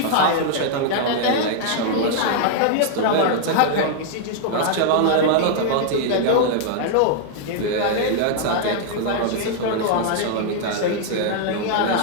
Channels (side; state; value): both; different; correlation 0.00